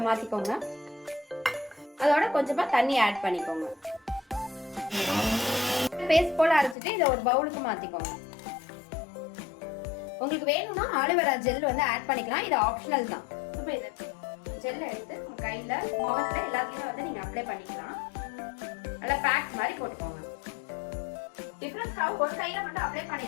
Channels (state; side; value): drops out; right; at 6.8 s